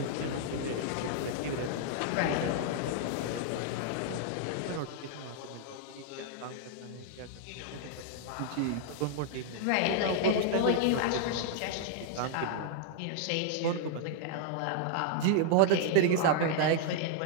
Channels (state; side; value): different; both; correlation 0.00